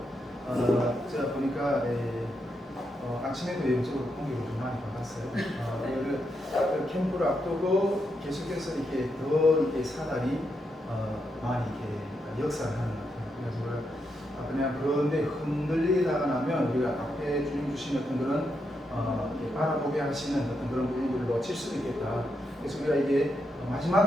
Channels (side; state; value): both; normal; correlation 0.83